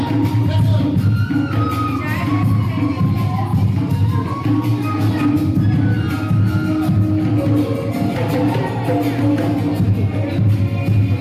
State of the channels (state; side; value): identical; both; correlation 1.00